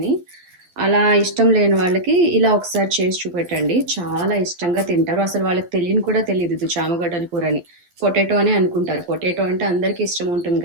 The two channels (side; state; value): left; late; 12 ms